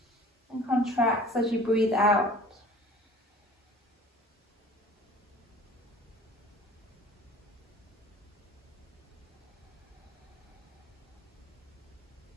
and contracts as you breathe out.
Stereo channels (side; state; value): both; normal; correlation 0.46